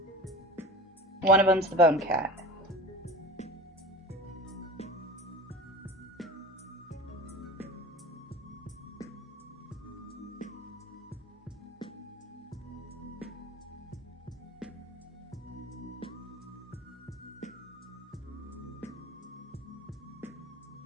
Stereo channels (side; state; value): both; normal; correlation 0.34